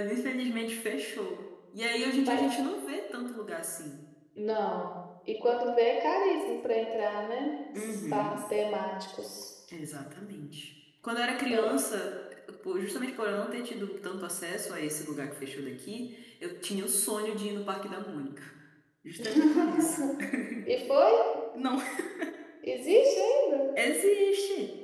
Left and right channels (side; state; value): both; identical; correlation 1.00